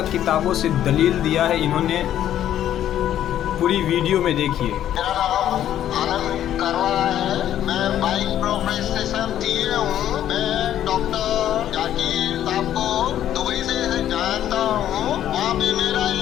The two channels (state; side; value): quieter; right; 11.3 dB